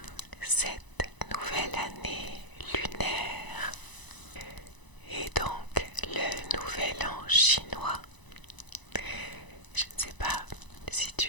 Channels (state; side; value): late; right; 1.0 ms